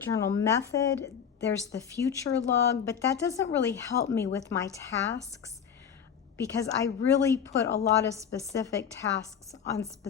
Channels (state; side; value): quieter; right; 7.7 dB